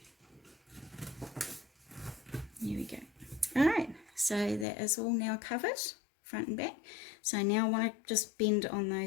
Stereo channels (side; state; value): right; drops out; at 4.7 s